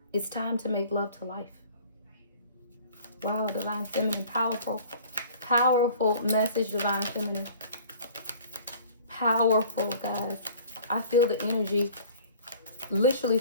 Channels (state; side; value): inverted; both; correlation -0.47